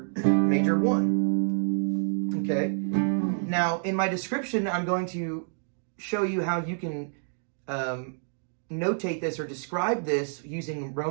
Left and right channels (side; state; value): left; silent; digital silence